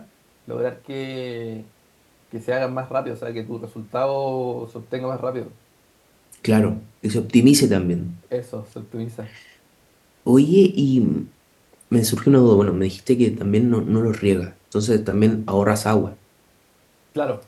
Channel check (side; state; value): both; identical; correlation 1.00